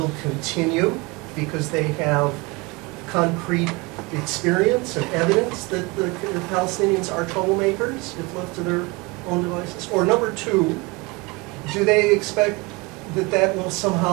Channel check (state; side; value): quieter; left; 25.7 dB